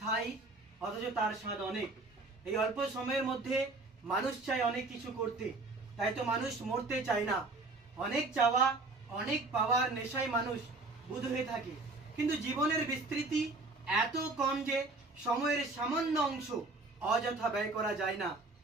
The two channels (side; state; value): left; quieter; 3.2 dB